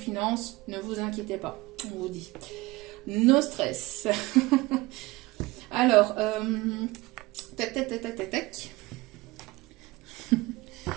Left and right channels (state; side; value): quieter; left; 21.1 dB